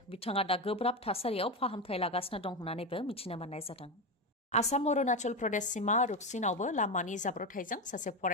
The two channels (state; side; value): normal; both; correlation 0.15